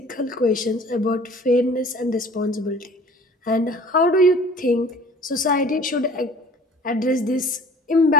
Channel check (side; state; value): both; normal; correlation 0.48